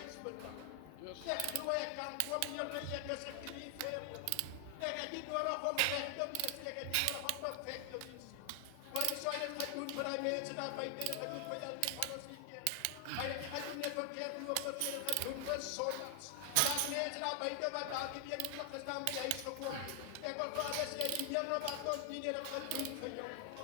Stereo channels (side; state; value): both; different; correlation 0.00